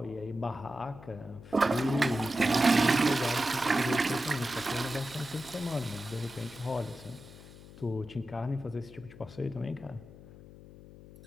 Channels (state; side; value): noise; left; hum, 18 dB below the sound